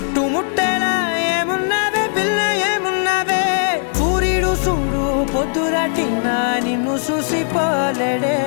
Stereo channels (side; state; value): right; silent; 64 dB below the other